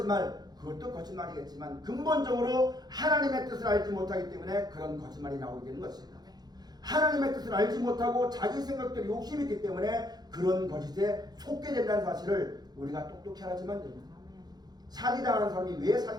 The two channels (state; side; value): late; left; 0.19 ms